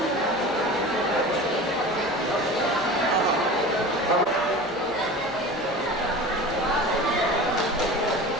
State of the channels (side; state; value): both; normal; correlation 0.35